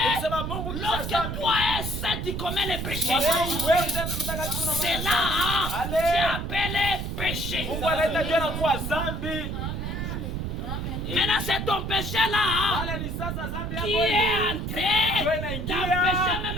Lorsque toi es saint, tu commets le péché. C'est là, Dieu appelle le péché. Maintenant, c'est ton péché là qui est entré d'empêcher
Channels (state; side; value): noise; right; rumble, 4 dB below the sound